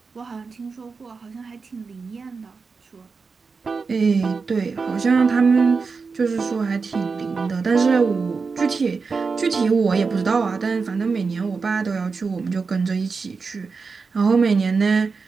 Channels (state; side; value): quieter; left; 4.8 dB